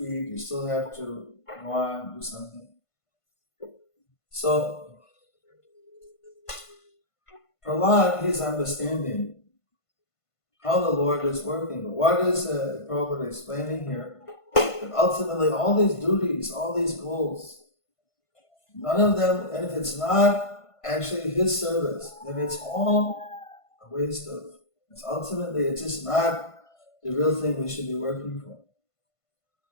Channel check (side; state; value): right; late; 1.5 ms